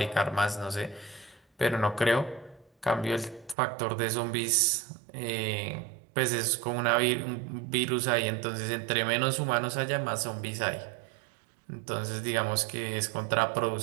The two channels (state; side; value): drops out; left; at 3.6 s